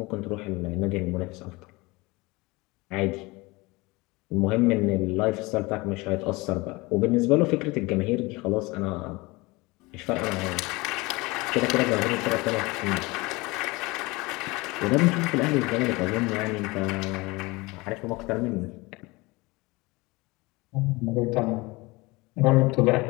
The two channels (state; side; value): quieter; right; 23.7 dB